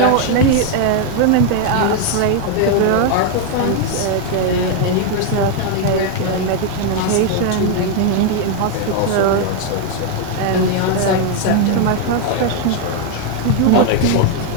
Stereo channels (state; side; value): different; both; correlation 0.01